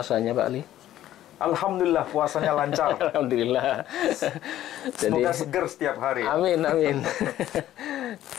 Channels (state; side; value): quieter; right; 13.0 dB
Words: Pak Ali? Alhamdulillah puasanya lancar. Alhamdulillah. Semoga seger setiap hari. Amin, amin.